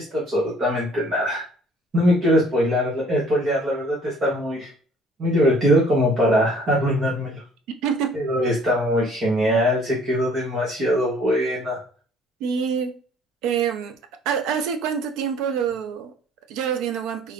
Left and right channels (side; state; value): both; normal; correlation 0.55